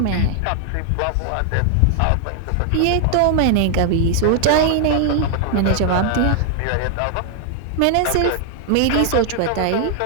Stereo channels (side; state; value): both; different; correlation 0.00